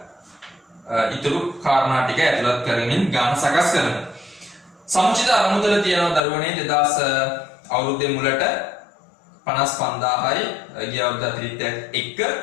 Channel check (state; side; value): drops out; right; at 6.2 s